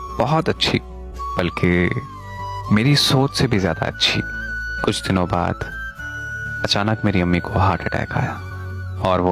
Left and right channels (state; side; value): identical; both; correlation 1.00